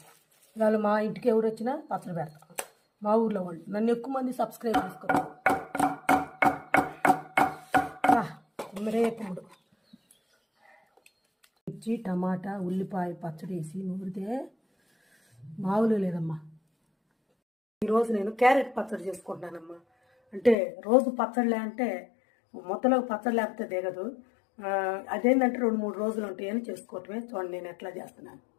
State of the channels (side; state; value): right; drops out; at 20.6 s